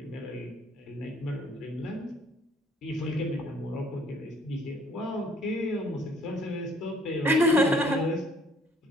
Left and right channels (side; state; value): both; normal; correlation 0.60